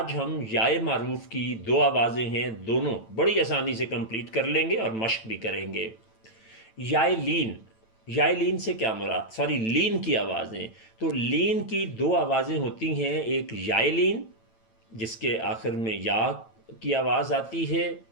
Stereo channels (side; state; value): right; late; 9.0 ms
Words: ہم یائے معروف کی دو آوازیں ہیں، دونوں بڑی آسانی سے کمپلیٹ کر لیں گے اور مشق بھی کریں گے۔ یائے لین، یائے لین سے کیا مراد، لین کی آوازیں، تو لین کی دو آوازیں ہوتی ہیں، ایک یائے لین جس کے آخر میں یا کی آواز آتی ہے